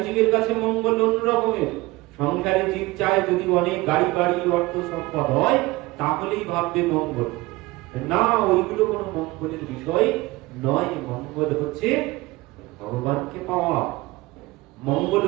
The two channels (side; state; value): left; quieter; 20.7 dB